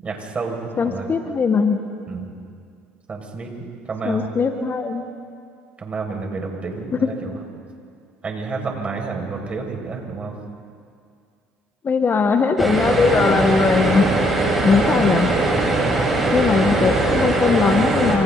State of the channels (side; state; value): both; normal; correlation 0.71